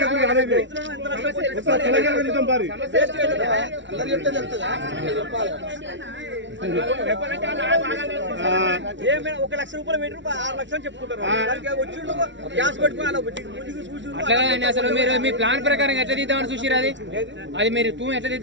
అట్లా అసలు మీరు మీ ప్లాన్ ప్రకారం ఎట్లా తీద్దామని చూసిరు అది మీరు తూ ఎట్లా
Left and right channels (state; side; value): late; left; 0.54 ms